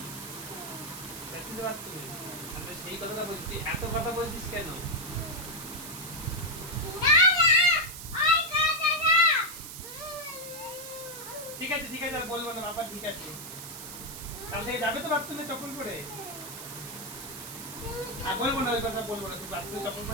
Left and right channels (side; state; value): right; noise; hiss, 10 dB below the sound